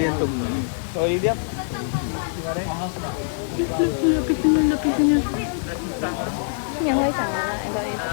tục rồi đi tiếp.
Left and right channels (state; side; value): silent; right; 59 dB below the other